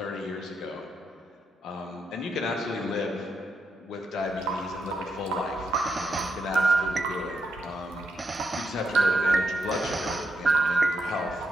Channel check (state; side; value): normal; both; correlation 0.82